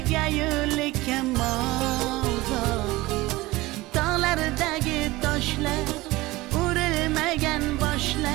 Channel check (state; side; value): quieter; left; 19.9 dB